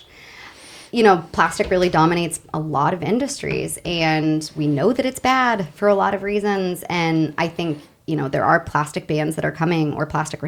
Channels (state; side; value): identical; both; correlation 1.00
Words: You know, plastic really dominates a lot of industries, and we know that it's bad for a lot of reasons. And I think, you know, there are plastic bans that are coming or plastic